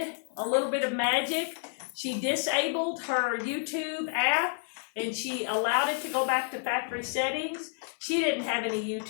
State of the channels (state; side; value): silent; right; 58 dB below the other